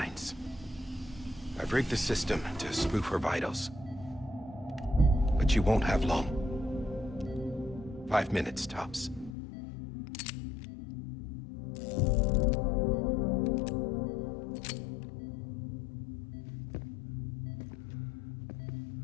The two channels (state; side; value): drops out; right; at 9.3 s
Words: I've rigged the system to spoof her vitals. But you won't have long. 5 minutes, tops.